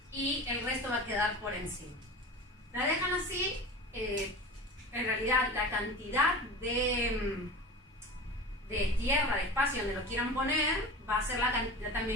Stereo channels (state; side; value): normal; both; correlation 0.32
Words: y el resto va a quedar por encima. La dejan así, en realidad la cantidad de tierra, de espacio donde lo quieran poner, va a ser la cantidad